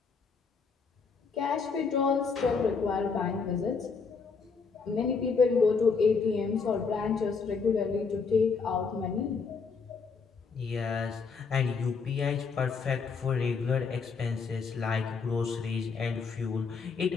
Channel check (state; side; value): quieter; right; 5.2 dB